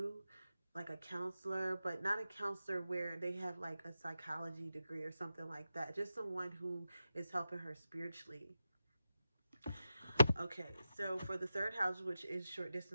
like a counselor, but not a counselor where they have like a psychology degree or something like that. Just someone who is helping her spiritually. Okay, so for the third house, which is short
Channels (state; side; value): inverted; both; correlation -0.91